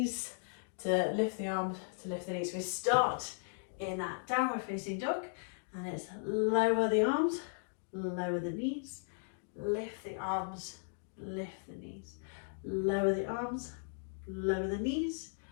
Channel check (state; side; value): silent; right; digital silence